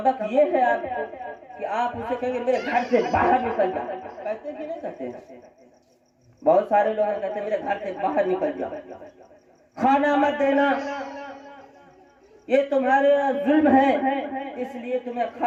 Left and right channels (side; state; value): both; identical; correlation 1.00